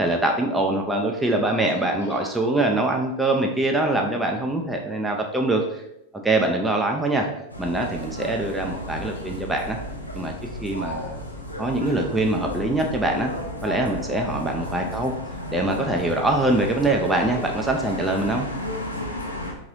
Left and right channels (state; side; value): normal; both; correlation 0.42